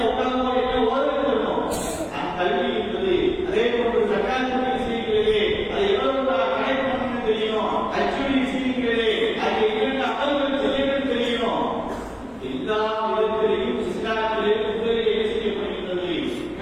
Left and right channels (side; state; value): both; identical; correlation 1.00